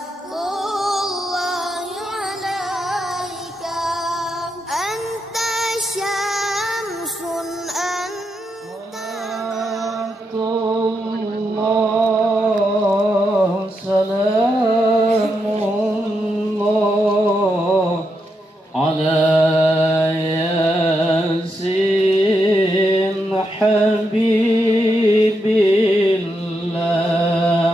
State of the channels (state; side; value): normal; both; correlation 0.83